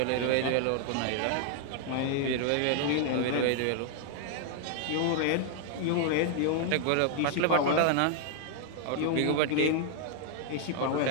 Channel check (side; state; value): both; different; correlation 0.00